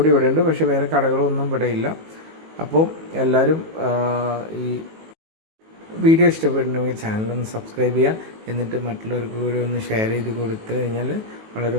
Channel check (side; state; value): left; late; 19 ms